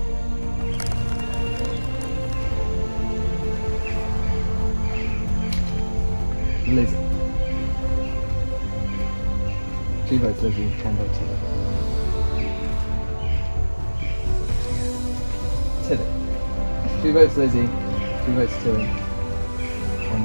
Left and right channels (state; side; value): inverted; both; correlation -1.00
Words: Lizzie. 2 votes Lizzie, 1 vote Tilly. Tilly. 2 votes Lizzie, 2 votes Tilly,